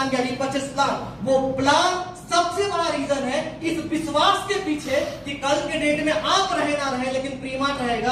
या रीपर्चेस प्लान, वो प्लान सबसे बड़ा रीजन है इस विश्वास के पीछे कि कल के डेट में आप रहे ना रहे लेकिन प्रीमार्ट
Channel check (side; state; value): both; identical; correlation 1.00